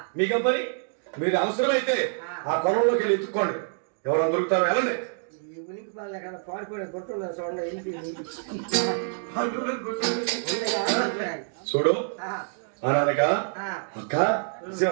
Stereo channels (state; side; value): silent; left; digital silence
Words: మీకేం పని? మీరు అవసరమైతే ఆ పొలంలోకి వెళ్ళి ఎత్తుక్కోండి, ఎవరైనా దొరుకుతారో వెళ్ళండి. ఉనికి బాగా కదా పాడిపోయిన గుర్తున్నా చూడండి. చూడు అనగా అక్క